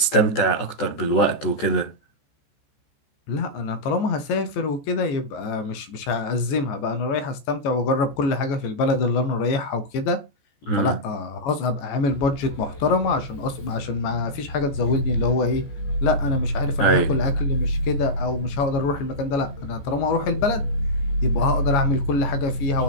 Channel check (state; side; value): late; right; 14 ms